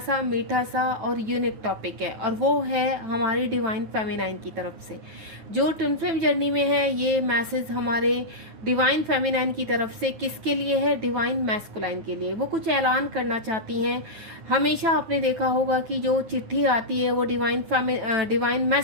मीठा सा और यूनिक टॉपिक है, और वो है हमारी डिवाइन फेमिनाइन की तरफ से। जो ट्विन फ्लेम जर्नी में है, ये मैसेज हमारे डिवाइन फेमिनाइन की तरफ से किसके लिए है? डिवाइन मैस्कुलाइन के लिए। वो कुछ ऐलान करना चाहती हैं। हमेशा आपने देखा होगा कि जो चिट्ठी आती है वो डिवाइन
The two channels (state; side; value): late; left; 9.6 ms